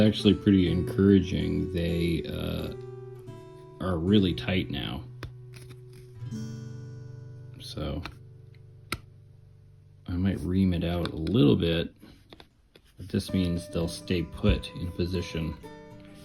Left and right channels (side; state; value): both; identical; correlation 1.00